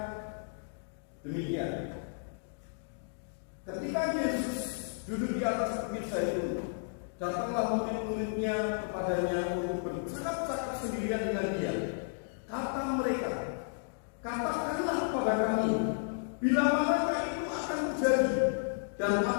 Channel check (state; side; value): silent; right; digital silence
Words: demikian. Ketika Yesus duduk di atas bukit Zaitun, datanglah murid-muridnya kepadanya untuk bercakap-cakap sendirian dengan dia. Kata mereka, katakanlah kepada kami, bila manakah itu akan terjadi, dan